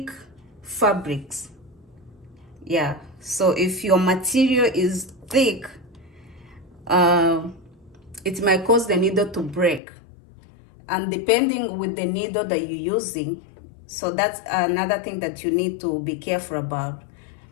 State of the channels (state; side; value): drops out; right; at 9.8 s